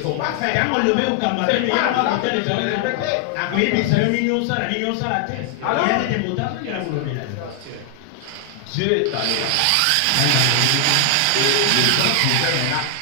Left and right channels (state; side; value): different; both; correlation 0.00